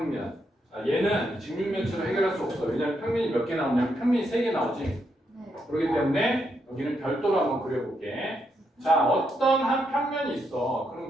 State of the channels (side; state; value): both; normal; correlation 0.79